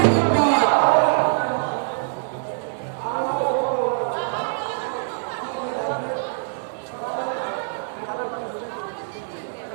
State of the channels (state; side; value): silent; left; digital silence